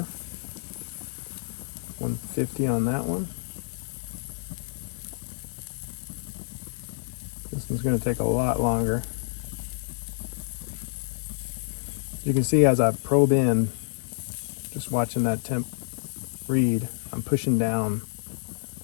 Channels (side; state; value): right; silent; digital silence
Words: 150 on that one. This one's gonna take a lot longer. You can see as I probe in, just watching that temp read, I'm pushing down